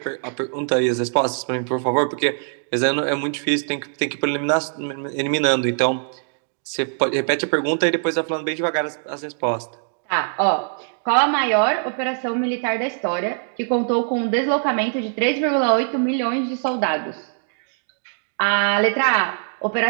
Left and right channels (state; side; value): silent; left; digital silence